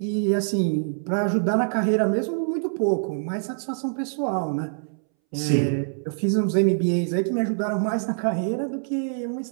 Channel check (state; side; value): silent; left; 62 dB below the other